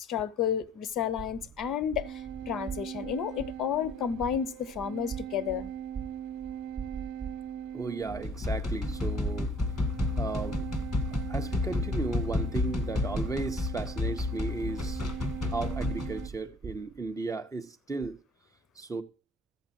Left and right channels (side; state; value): both; normal; correlation 0.54